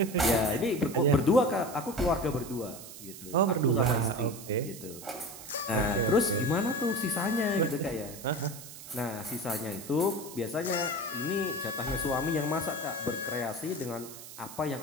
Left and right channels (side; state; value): right; noise; hiss, 14 dB below the sound